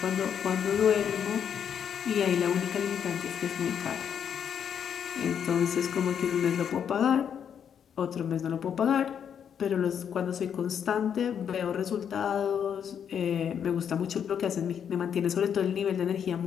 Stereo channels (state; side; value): quieter; right; 8.2 dB